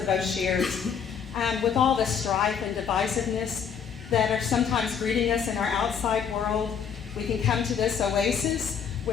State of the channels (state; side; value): quieter; right; 7.2 dB